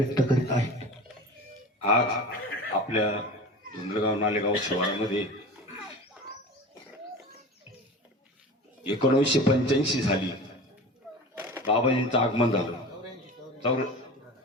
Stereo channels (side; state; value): both; normal; correlation 0.34